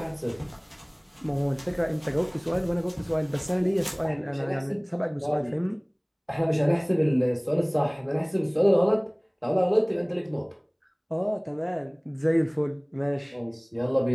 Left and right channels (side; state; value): both; identical; correlation 1.00